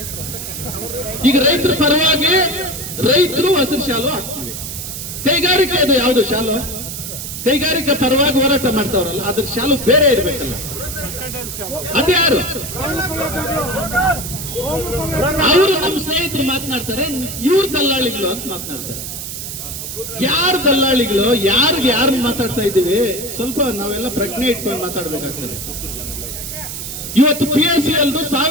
ಈಗ ರೈತರ ಪರವಾಗಿ ರೈತರು ಹಸಿರು ಶಾಲು ಹಾಕ್ತೀವಿ. ಕೈಗಾರಿಕೆ ಅದು ಯಾವುದು ಶಾಲು? ಕೈಗಾರಿಕೆ ಪರವಾಗಿ ಹೋರಾಟ ಮಾಡ್ತಾವ್ರಲ್ಲ, ಅದ್ರ ಶಾಲು ಬೇರೆ ಇರ್ಬೇಕಲ್ಲ. ಅದ್ಯಾರು? ಅವರು ನಮ್ಮ ಸ್ನೇಹಿತರು ಮಾತನಾಡ್ತಾರೆ, ಇವ್ರ ದಲ್ಲಾಳಿಗಳು ಅಂತ ಮಾತನಾಡ್ತಾರೆ. ಯಾರು ದಲ್ಲಾಳಿಗಳು? ಯಾರು ಮಾತಾಡ್ತಾ ಇದ್ದೀವಿ? ಸ್ವಲ್ಪ ನಾವೆಲ್ಲ ಪ್ರಜ್ಞೆ ಇಟ್ಕೊಂಡು ಮಾತಾಡ್ಬೇಕಾಗ್ತದೆ. ಇವತ್ತು PSCL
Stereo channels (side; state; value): right; noise; hiss, 7 dB below the sound